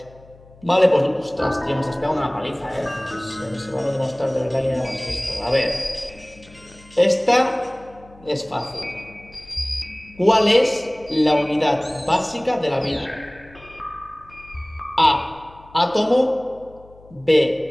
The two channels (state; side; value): noise; left; hum, 24 dB below the sound